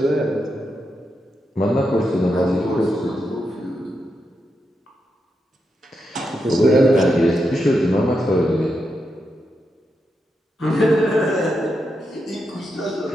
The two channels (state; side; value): normal; both; correlation 0.85